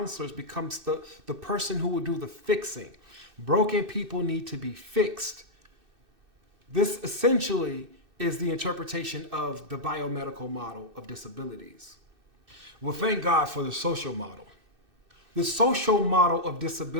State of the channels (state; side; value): late; left; 2.6 ms